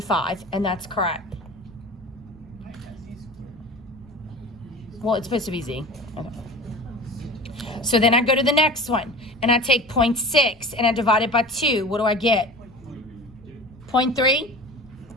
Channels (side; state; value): left; noise; rumble, 27 dB below the sound